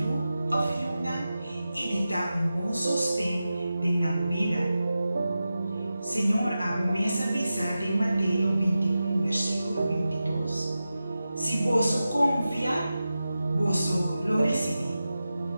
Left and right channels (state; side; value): inverted; both; correlation -0.93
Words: ofertar e de dar bom sustento na vida. Senhor, a promessa avisar de Mateus 21, versículo 22. Se vosso confiar, vosso lo recebi.